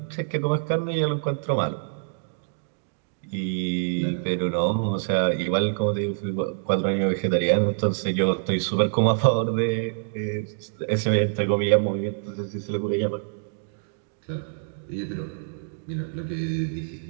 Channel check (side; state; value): left; silent; digital silence